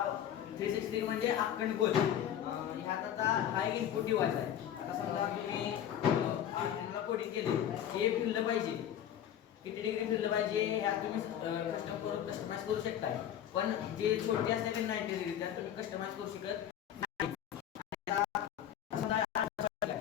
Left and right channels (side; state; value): right; quieter; 10.2 dB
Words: 360 म्हणजे अखंड गोल. ह्यात आता हा एक इनपुट डिव्हाइस आहे. आता समजा तुम्ही आर्टिनला कोडिंग केले, हे फिरलं पाहिजे, किती डिग्री फिरलं पाहिजे ह्यात तुम्ही कस्टमाइज करू शकता. पण जे छोटे असते ते 90 डिग्री त्यात तुम्ही कस्टमाइज करू शकत नाही.